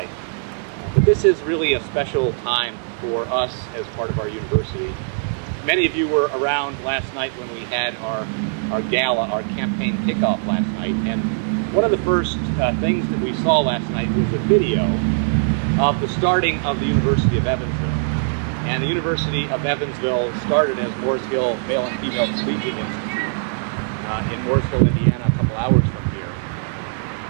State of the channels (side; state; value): left; silent; digital silence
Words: But this is really a special time for us as part of our university. Many of you were around last night when we had our gala, our campaign kickoff last night, and one of the first things that we saw last night was a video of the starting of the University of Evansville. And the University of Evansville started as Mooresville Male and Female Collegiate Institute in Mooresville, Indiana, a couple hours from here.